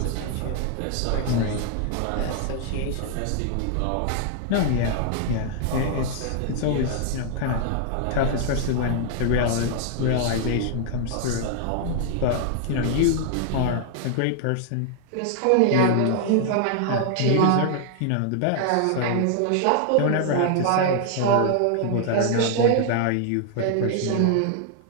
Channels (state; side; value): different; both; correlation 0.00